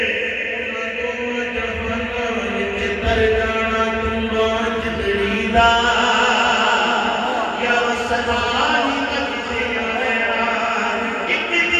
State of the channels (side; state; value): both; identical; correlation 1.00